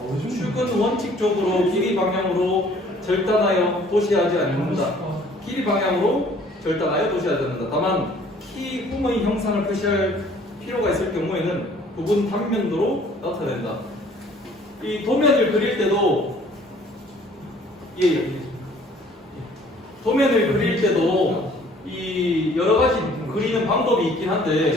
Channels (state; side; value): normal; both; correlation 0.56